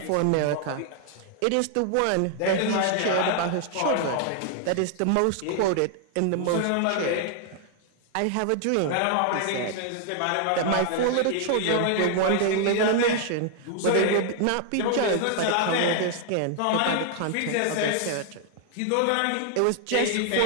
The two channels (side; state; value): both; different; correlation 0.00